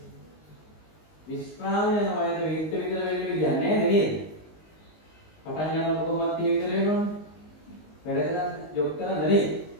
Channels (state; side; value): late; right; 19 ms